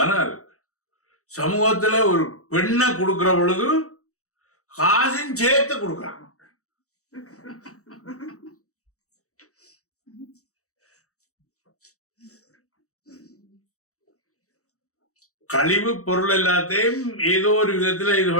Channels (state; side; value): late; right; 0.65 ms